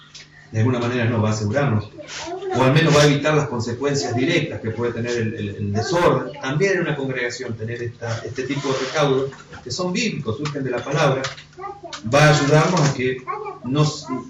no va a asegurarnos, o al menos va a evitar las consecuencias directas que puede tener el desorden. También en una congregación tener este tipo de recaudos que son bíblicos, surgen de la palabra, va a ayudarnos a que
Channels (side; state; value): both; identical; correlation 1.00